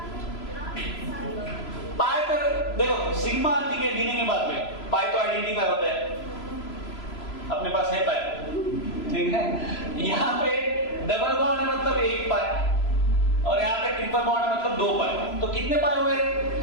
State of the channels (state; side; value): late; right; 3.0 ms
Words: पाई पर देखो, सिग्मा ठीक है गिने के बाद में, पाई तो आइडेंटिफाई होता है, अपने पास है पाई, ठीक है। यहाँ पे डबल बॉन्ड है मतलब 1 पाई, और यहाँ पे ट्रिपल बॉन्ड है मतलब 2 पाई। तो कितने पाई हुए?